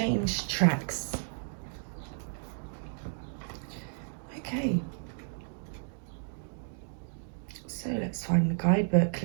tracks? Okay. So let's find the guidebook.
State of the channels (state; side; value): silent; left; digital silence